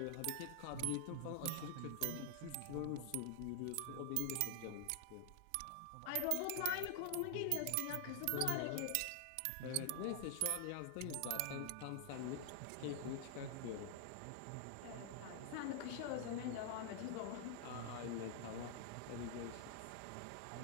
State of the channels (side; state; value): both; different; correlation 0.00